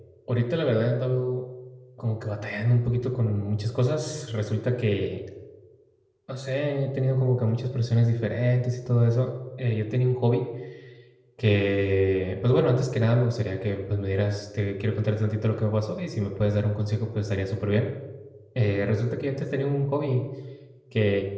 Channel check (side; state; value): both; identical; correlation 1.00